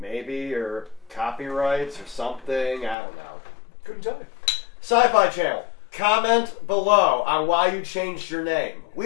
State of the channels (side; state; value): right; drops out; at 3.0 s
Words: or copyrights or something. I don't know. Couldn't tell you. Sci-Fi Channel. Comment below on why you changed your name.